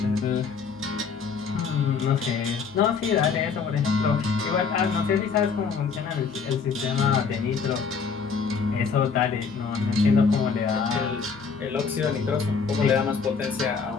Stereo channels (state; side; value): quieter; right; 5.6 dB